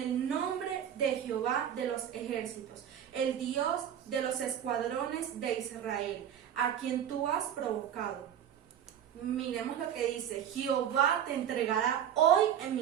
nombre de Jehová de los ejércitos, el Dios de los escuadrones de Israel, a quien tú has provocado. Miremos lo que dice: Jehová te entregará hoy en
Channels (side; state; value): left; quieter; 9.6 dB